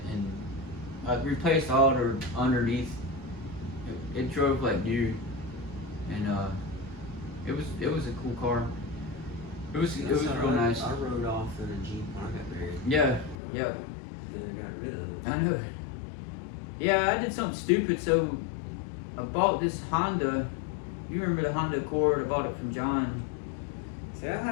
and I replaced all the underneath. It drove like new, and it was a cool car. It was real nice. I rode off in a Jeep when I got married. Yeah. Then I got rid of it. I know. Yeah, I did something stupid. So I bought this Honda. You remember the Honda Accord? I bought it from John. See, I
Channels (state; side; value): drops out; right; at 13.4 s